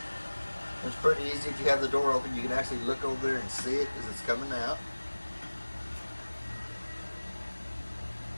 It's pretty easy. If you have the door open, you can actually look over there and see it as it's coming out.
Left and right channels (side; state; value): both; inverted; correlation -1.00